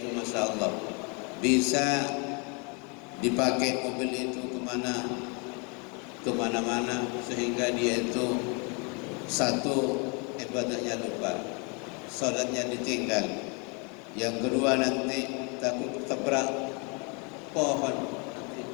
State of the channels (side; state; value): right; quieter; 33.1 dB